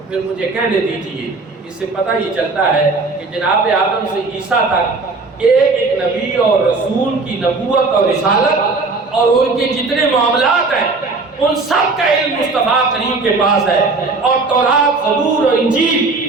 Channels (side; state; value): left; quieter; 3.8 dB